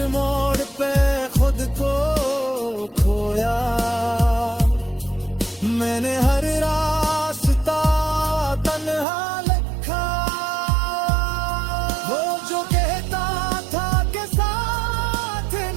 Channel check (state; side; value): drops out; left; at 9.1 s